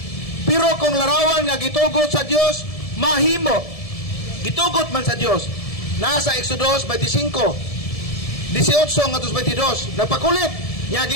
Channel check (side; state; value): right; late; 1.7 ms